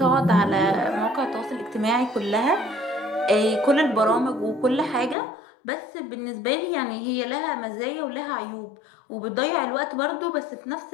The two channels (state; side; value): drops out; right; at 5.2 s